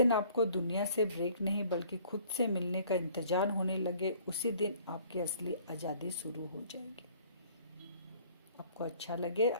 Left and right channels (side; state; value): both; inverted; correlation -0.55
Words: आपको दुनिया से ब्रेक नहीं बल्कि खुद से मिलने का इंतजार होने लगे, उसी दिन आपकी असली आज़ादी शुरू हो जाएगी। आपको अच्छा लगे